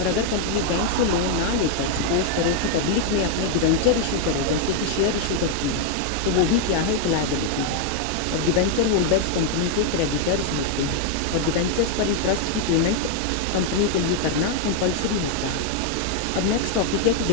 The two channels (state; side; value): different; both; correlation 0.00